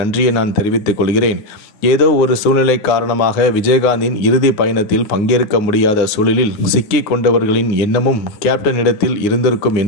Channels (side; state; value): right; late; 9.6 ms